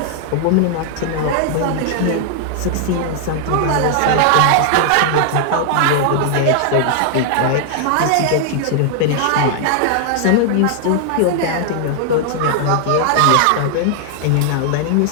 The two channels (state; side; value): different; both; correlation -0.01